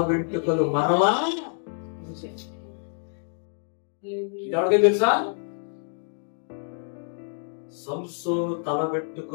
వెంట్రుకలు మరలా. ఎవరికీ తెలుసా? సంసోను తల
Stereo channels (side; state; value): right; silent; 60 dB below the other